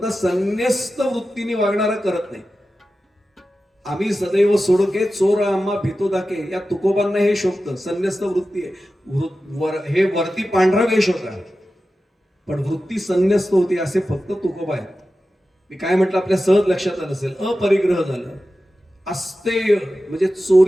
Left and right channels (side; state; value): both; normal; correlation 0.93